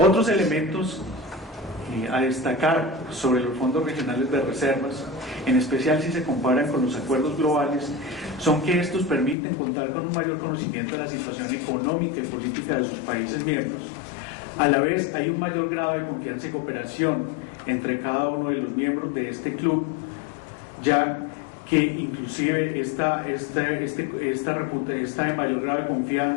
elementos a destacar sobre los fondos regionales de reservas, en especial si se comparan con los acuerdos globales, son que estos permiten contar con un mayor conocimiento de la situación económica y política de sus países miembros. A la vez hay un mayor grado de confianza y cooperación entre cada uno de los miembros de este club, ya que inclusive esta de mayor grado de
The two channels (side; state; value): right; drops out; at 9.3 s